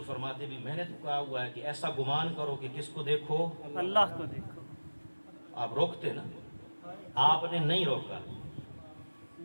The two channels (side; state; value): both; inverted; correlation -1.00